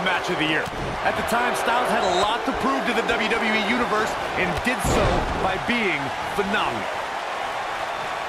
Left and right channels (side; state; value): both; identical; correlation 1.00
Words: Match of the Year. At the time, Styles had a lot to prove to the WWE Universe and did so by being phenomenal.